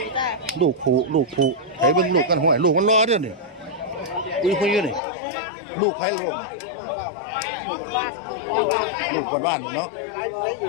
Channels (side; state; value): right; drops out; at 5.0 s